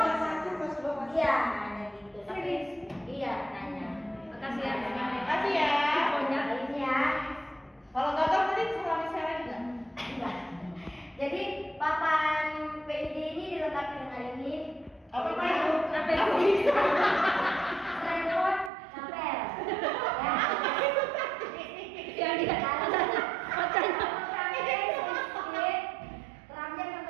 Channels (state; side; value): drops out; left; at 18.7 s